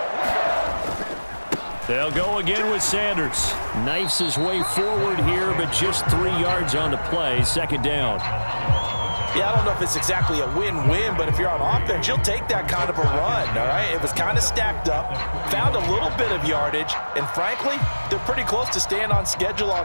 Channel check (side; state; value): both; inverted; correlation -1.00